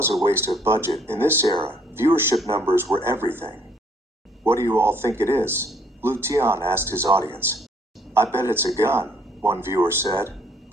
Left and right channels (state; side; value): normal; both; correlation 0.64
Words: a waste of budget, in this era, viewership numbers were everything. "What do you all think it is?" Lu Tian asked his audience. "I bet it's a gun," one viewer said.